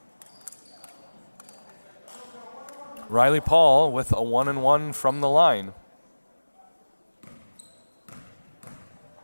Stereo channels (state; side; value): inverted; both; correlation -1.00